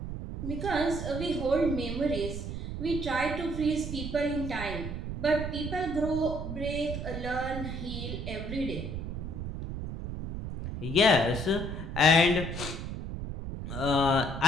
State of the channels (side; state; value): right; noise; rumble, 6 dB below the sound